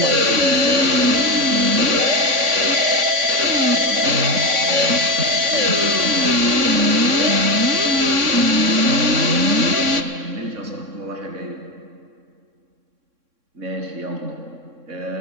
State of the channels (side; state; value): left; late; 3.6 ms